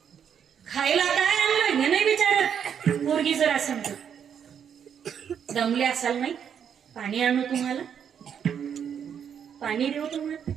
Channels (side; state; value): left; quieter; 8.1 dB